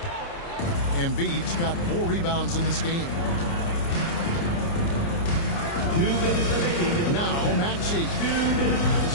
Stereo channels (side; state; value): right; late; 29 ms